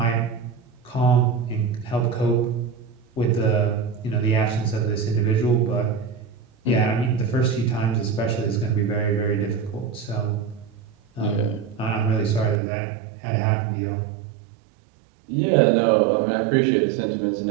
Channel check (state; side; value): drops out; left; at 12.6 s